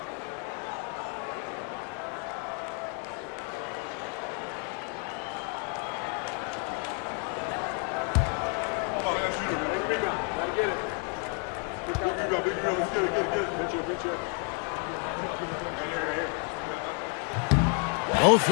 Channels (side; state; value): right; quieter; 38.4 dB